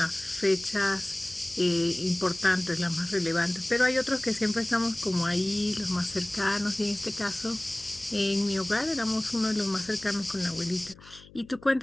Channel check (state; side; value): noise; left; hum, 23 dB below the sound